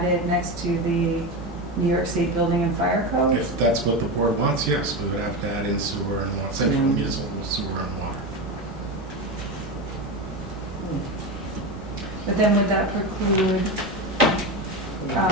next to the New York State Building and Fire Code? If that's what the board wants, yes, we would have to add in sewer and water, central municipal sewer and water. But then would that preclude,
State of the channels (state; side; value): normal; both; correlation 0.19